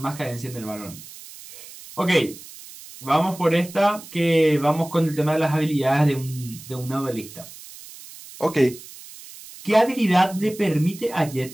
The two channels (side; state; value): right; noise; hiss, 17 dB below the sound